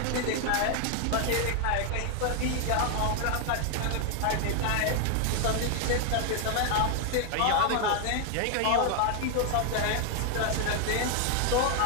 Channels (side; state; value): both; different; correlation 0.00